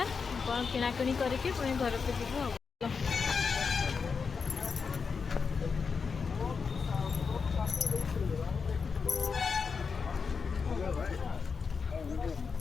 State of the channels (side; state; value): right; quieter; 5.4 dB